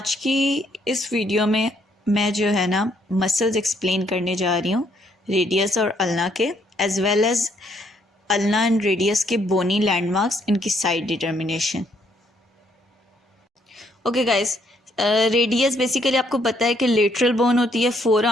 की इस वीडियो में मैं जो है ना मसल्स एक्सप्लेन करने जा रही हूँ, रेडियस और अल्ना के, as well as ulna and radius के बोनी लैंडमार्क्स, इनकी side determination. Okay guys, radius basically आपको पता है कि लेटरल बोन होती है फोर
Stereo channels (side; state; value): both; normal; correlation 0.70